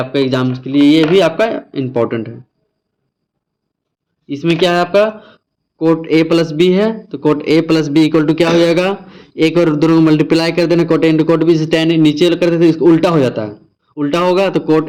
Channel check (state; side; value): identical; both; correlation 1.00